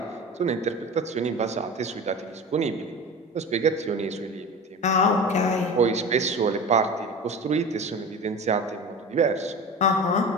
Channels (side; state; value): both; normal; correlation 0.32